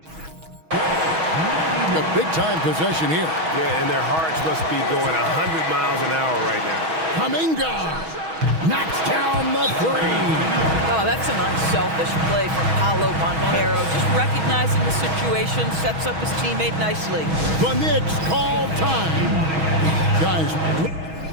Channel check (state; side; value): late; left; 6.2 ms